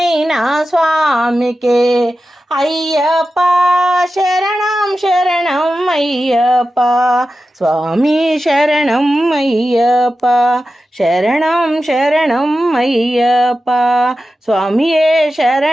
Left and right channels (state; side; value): normal; both; correlation 0.92